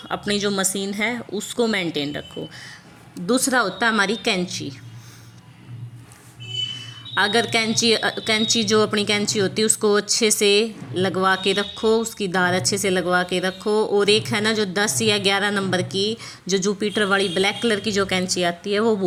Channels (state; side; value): identical; both; correlation 1.00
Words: अपनी जो मशीन है उसको मेंटेन रखो। दूसरा होता है हमारी कैंची। अगर कैंची जो अपनी कैंची होती है उसको अच्छे से लगवा के रखो, उसकी धार अच्छे से लगवा के रखो। और एक है ना जो 10 या 11 नंबर की जो जुपिटर वाली ब्लैक कलर की जो कैंची आती है वो